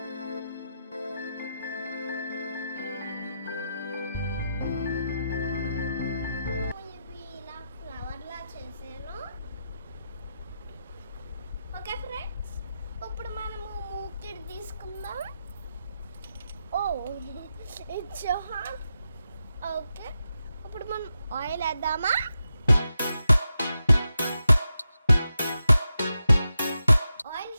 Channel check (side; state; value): both; inverted; correlation -0.88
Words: Okay friends, ఇప్పుడు మనము మూకిడ్ తీసుకుందాం. Oh it's hot. ఓకే, ఇప్పుడు మనం ఆయిల్ వేద్దామా. ఆయిల్